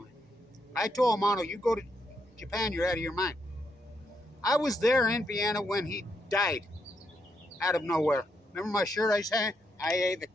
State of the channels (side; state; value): both; normal; correlation 0.79